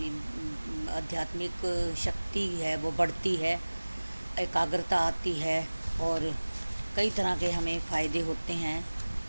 आध्यात्मिक शक्ति है वो बढ़ती है, एकाग्रता आती है और कई तरह के हमें फ़ायदे होते हैं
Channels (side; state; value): both; inverted; correlation -1.00